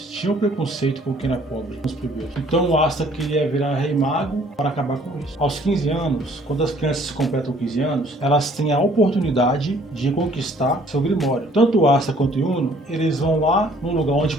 tinham preconceito com quem era pobre, com os plebeus. Então o Asta queria virar rei mago para acabar com isso. Aos 15 anos, quando as crianças completam 15 anos, elas têm a oportunidade de conquistar seu grimório. Tanto o Asta quanto o Yuno, eles vão lá num lugar onde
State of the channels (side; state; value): both; normal; correlation 0.58